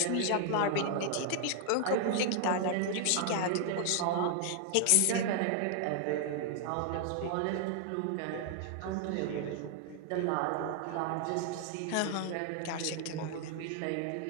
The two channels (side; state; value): both; different; correlation 0.00